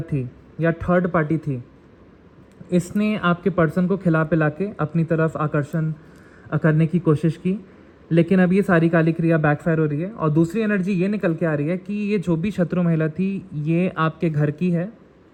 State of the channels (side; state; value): both; identical; correlation 1.00